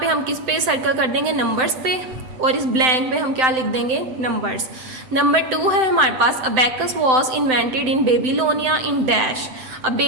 हम किस पे सर्कल कर देंगे, नंबर्स पे, और इस ब्लैंक में हम क्या लिख देंगे, नंबर्स। नंबर 2 है हमारे पास, abacus was invented in Babylonia in dash. अब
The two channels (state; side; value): late; left; 7.8 ms